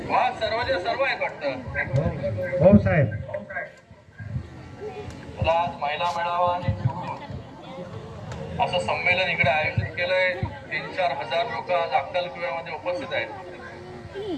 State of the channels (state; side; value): identical; both; correlation 1.00